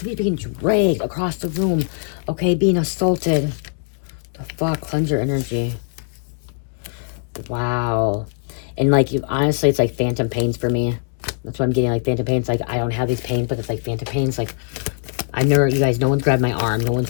being dragged across the room. Okay, being assaulted. The fuck? Cleanse your energy. Wow. And like, honestly, it's like phantom pains for me. That's what I'm getting, like phantom pains. Like, I don't have these pains, but it's like phantom pains. Like, I know you guys, no one's grabbed my arm. No one's,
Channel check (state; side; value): silent; right; digital silence